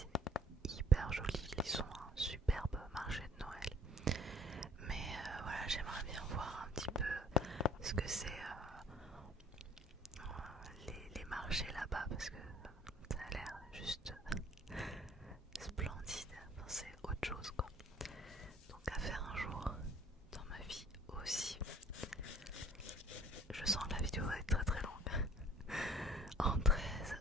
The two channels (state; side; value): normal; both; correlation 0.53